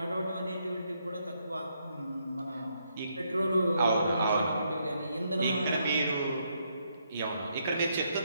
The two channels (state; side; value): inverted; both; correlation -0.76